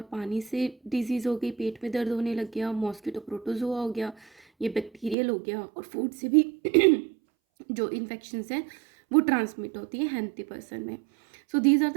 पानी से डिजीज़ हो गई, पेट में दर्द होने लग गया, मॉस्किटो प्रोटोजोआ हो गया, ये बैक्टीरियल हो गया, और फूड से भी जो इन्फेक्शंस हैं वो ट्रांसमिट होती है हेल्थी पर्सन में। So these are the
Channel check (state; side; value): drops out; left; at 5.2 s